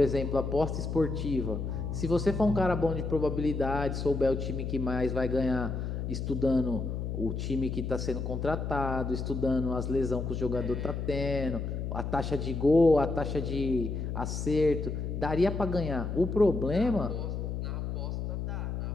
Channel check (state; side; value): noise; left; hum, 3 dB below the sound